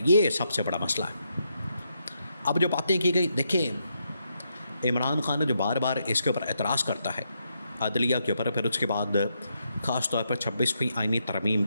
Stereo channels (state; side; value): inverted; both; correlation -0.80